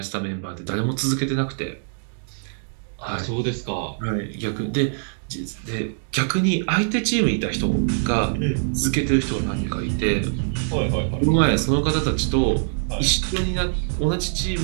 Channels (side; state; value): left; silent; digital silence